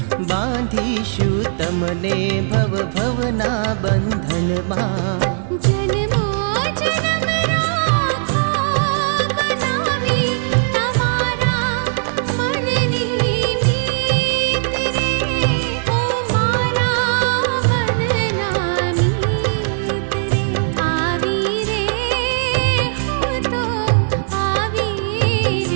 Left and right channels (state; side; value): silent; left; digital silence